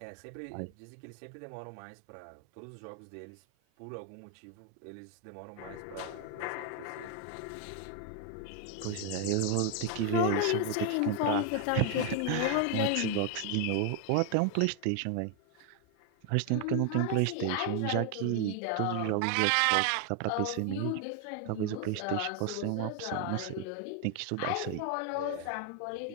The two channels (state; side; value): different; both; correlation 0.00